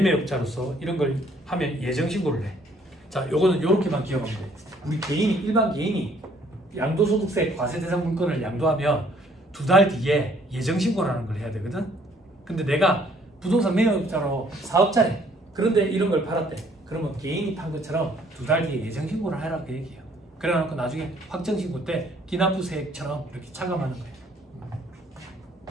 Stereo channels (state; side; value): normal; both; correlation 0.62